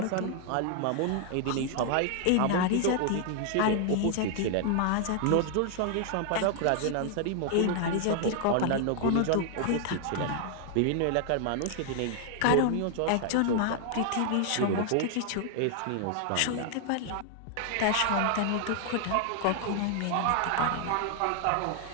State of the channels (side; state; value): both; different; correlation 0.00